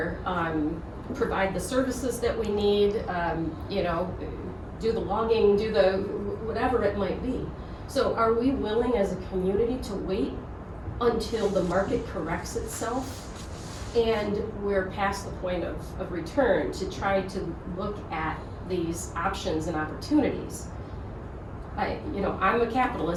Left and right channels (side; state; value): both; identical; correlation 1.00